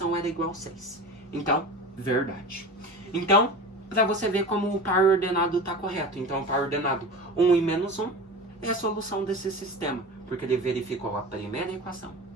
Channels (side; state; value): both; normal; correlation 0.32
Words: era igual a 6. Então, verdade. Então, para você ver como o par ordenado está correto. Então, o par ordenado 1 e menos 1 é a solução desse sistema. Porque ele verificou a primeira equação